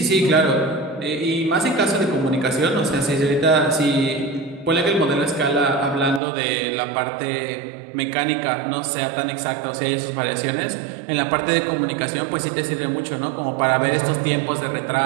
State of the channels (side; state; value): left; drops out; at 6.2 s